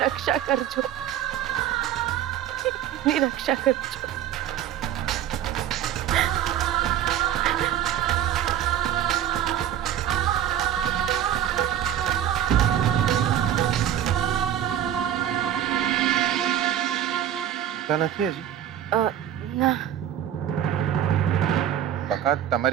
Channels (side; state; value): left; quieter; 10.6 dB